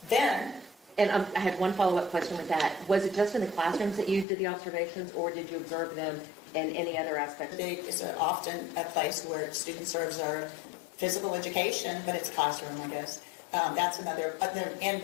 Then, and I had one follow-up question with that. Was it just in the classrooms that you did the observations, or did you observe them in any other aspect? It's often a place where students observe physical education, but it's classroom, I guess. That's another,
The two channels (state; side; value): drops out; right; at 4.2 s